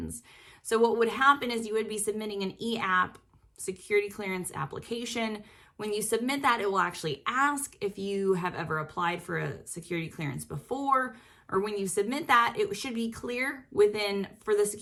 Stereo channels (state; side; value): identical; both; correlation 1.00